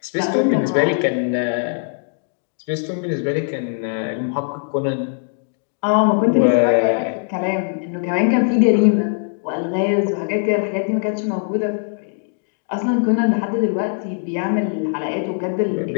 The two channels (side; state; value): right; silent; digital silence